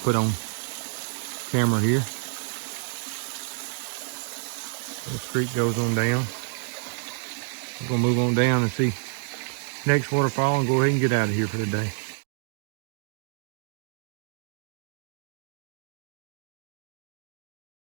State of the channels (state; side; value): silent; left; digital silence